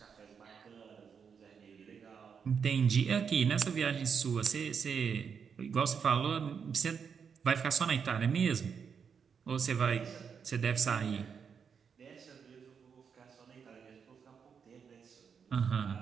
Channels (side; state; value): left; quieter; 6.6 dB